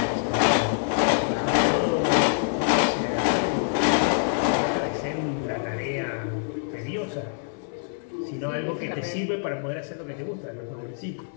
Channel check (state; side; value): silent; right; 61 dB below the other